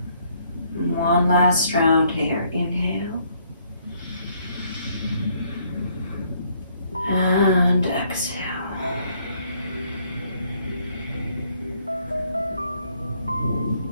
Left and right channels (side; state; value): both; inverted; correlation -0.67